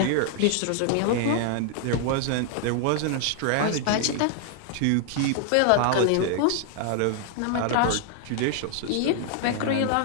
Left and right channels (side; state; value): both; different; correlation 0.00